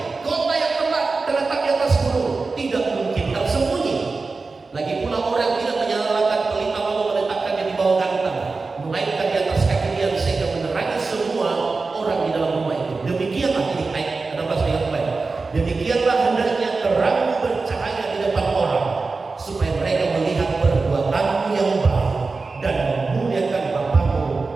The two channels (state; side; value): quieter; left; 4.0 dB